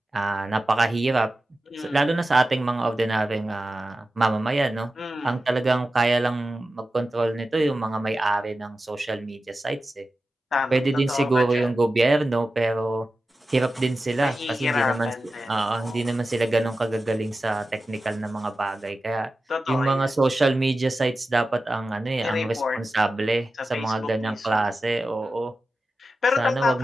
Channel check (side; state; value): both; normal; correlation 0.93